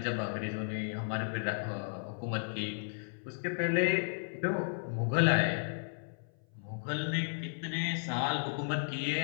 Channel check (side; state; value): right; silent; 55 dB below the other